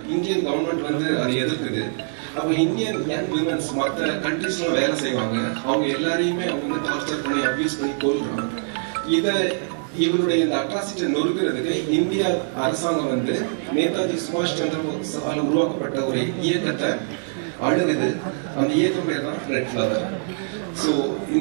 இந்தியன் கவர்மெண்ட் வந்து அதை எதிர்க்குது. அப்போ இந்தியன் யங் விமன்ஸ் மற்ற கண்ட்ரீஸ்லாம் வேலை செய்வாங்க, அவங்க எல்லாரையுமே அவங்க வந்து டார்ச்சர் பண்ணி அபியூஸ் பண்ணி கொள்றாங்க. இவருடைய இந்த அட்ராசிட்டி நொறுக்கிறதுக்கு இந்திய அரசாங்கம் வந்து நேதாஜி சுபாஷ் சந்திர போஸால் உருவாக்கப்பட்ட ஒரு இயக்கத்தை அணுகுது. அந்த இயக்கம் பேர் தான் ரெட் ஃபிளவர். ஸோ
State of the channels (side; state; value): left; silent; 63 dB below the other